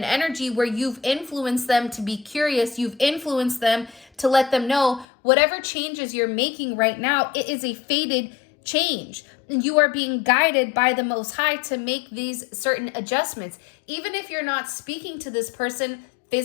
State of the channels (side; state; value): right; drops out; at 5.1 s